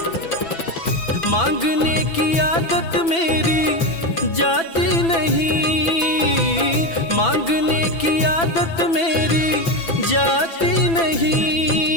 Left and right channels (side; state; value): right; late; 6.0 ms